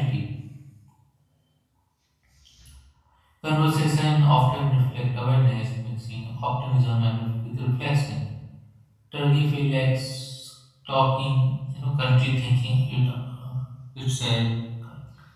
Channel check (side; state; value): both; identical; correlation 1.00